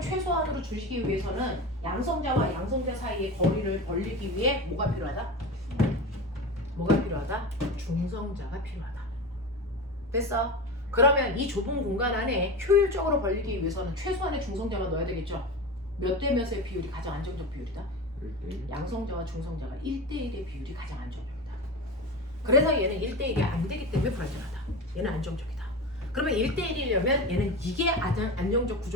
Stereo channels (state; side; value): normal; both; correlation 0.26